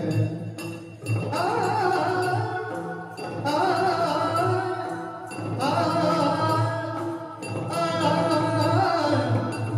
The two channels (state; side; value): identical; both; correlation 1.00